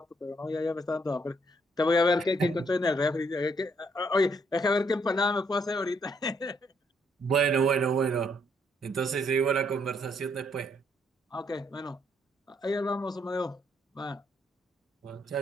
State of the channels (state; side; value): normal; both; correlation 0.71